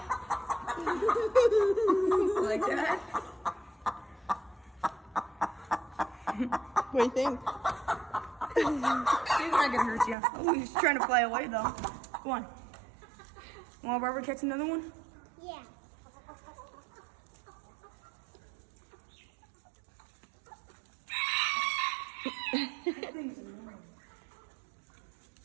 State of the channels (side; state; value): left; drops out; at 10.2 s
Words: Like that? What do you think? He's not gonna hurt you. Oh, he's trying to fly away though. Go on. Want Barbara catch another one? Yeah.